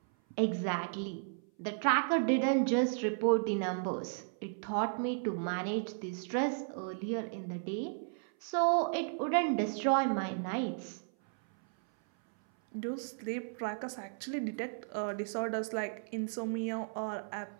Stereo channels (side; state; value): left; silent; 55 dB below the other